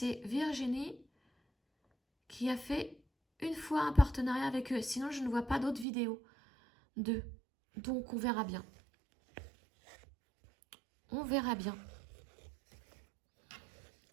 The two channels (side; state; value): left; drops out; at 5.9 s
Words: Virginie qui a fait une fois un partenariat avec eux. Sinon, je ne vois pas d'autres vidéos d'eux. Donc, on verra bien. On verra bien.